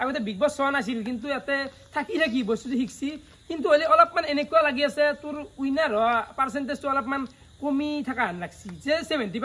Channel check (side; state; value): both; identical; correlation 1.00